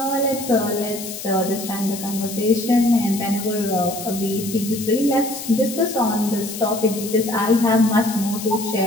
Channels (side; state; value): left; noise; hiss, 10 dB below the sound